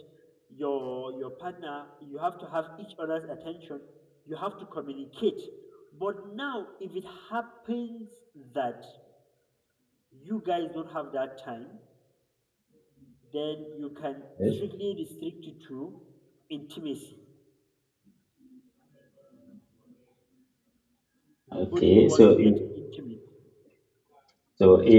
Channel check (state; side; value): identical; both; correlation 1.00